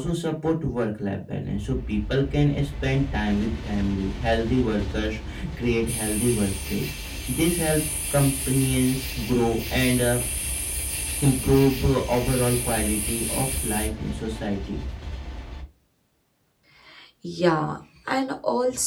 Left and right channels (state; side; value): identical; both; correlation 1.00